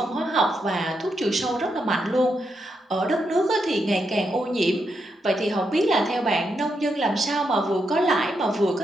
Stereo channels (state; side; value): normal; both; correlation 0.82